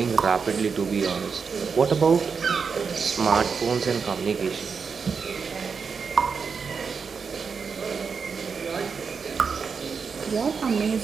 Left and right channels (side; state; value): left; quieter; 5.6 dB